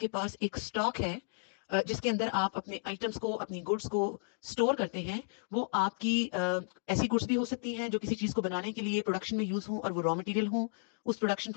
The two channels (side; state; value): right; silent; digital silence